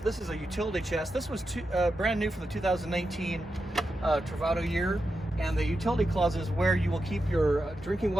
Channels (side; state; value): both; normal; correlation 0.88